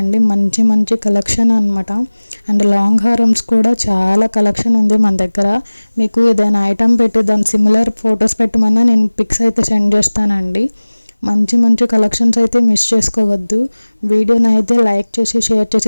మంచి మంచి కలెక్షన్ అనమాట. అండ్ లాంగ్ హారమ్స్ కూడా చాలా కలెక్షన్ ఉంది మన దగ్గర. మీకు ఏదైనా ఐటమ్ పెట్టి దాని సిమిలర్ ఫొటోస్ పెట్టమన్నా నేను పిక్స్ అయితే సెండ్ చేస్తానండి. మంచి మంచి కలెక్షన్స్ అయితే మిస్ చేసుకోవద్దు. వీడియోని అయితే లైక్ చేసి, షేర్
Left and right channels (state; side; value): inverted; both; correlation -1.00